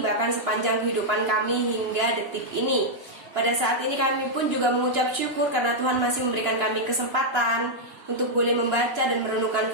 bahkan sepanjang kehidupan kami hingga detik ini. Pada saat ini kami pun juga mengucap syukur karena Tuhan masih memberikan kami kesempatan untuk boleh membaca dan merenungkan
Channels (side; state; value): left; late; 2.9 ms